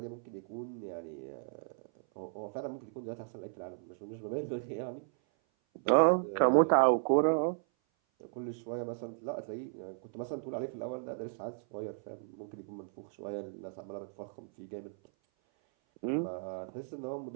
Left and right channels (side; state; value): left; silent; 54 dB below the other